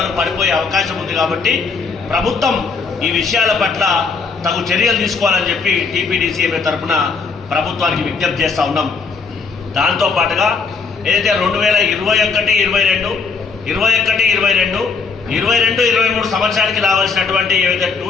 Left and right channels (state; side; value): quieter; right; 4.9 dB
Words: పడిపోయే అవకాశం ఉంది. కాబట్టి ప్రభుత్వం ఈ విషయాల పట్ల తగు చర్యలు తీసుకోవాలని చెప్పి టీపీడీసీఎంఏ తరఫున ప్రభుత్వానికి విజ్ఞప్తి చేస్తూ ఉన్నాం. దాంతో పాటుగా ఏదైతే 2021, 22, 23 సంవత్సరానికి రావాల్సినటువంటి ఏవైతే